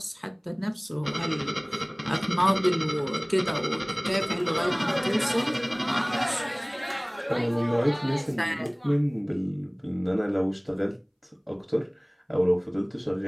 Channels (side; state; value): both; identical; correlation 1.00